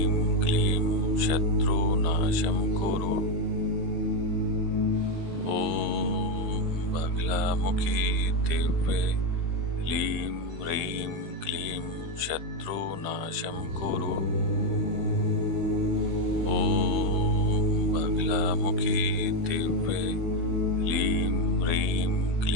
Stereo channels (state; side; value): late; left; 15 ms